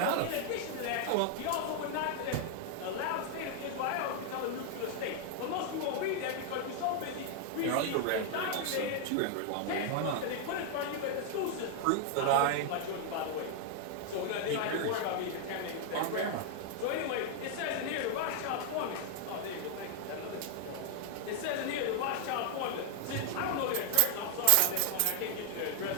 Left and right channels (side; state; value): both; different; correlation 0.00